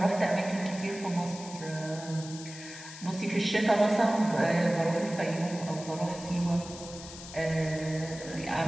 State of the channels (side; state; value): left; noise; hiss, 14 dB below the sound